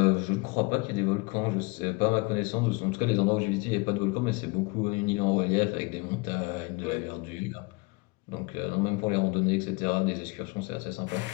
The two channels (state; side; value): quieter; right; 27.2 dB